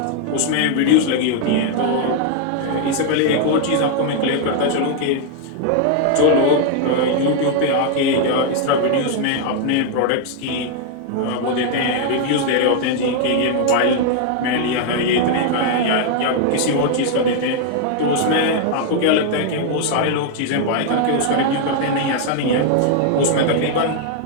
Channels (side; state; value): both; different; correlation 0.00